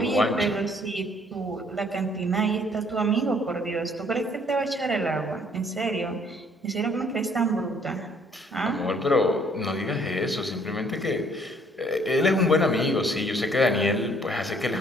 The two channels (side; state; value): both; normal; correlation 0.62